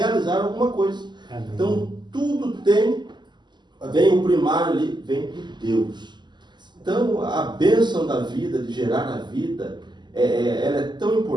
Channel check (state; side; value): late; left; 0.21 ms